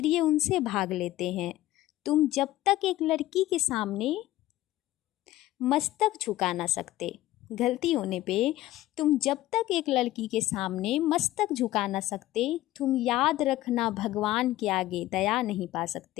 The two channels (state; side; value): quieter; right; 15.7 dB